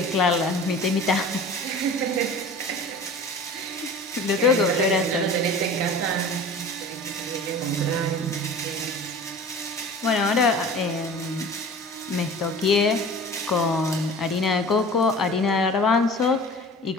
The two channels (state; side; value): normal; both; correlation 0.40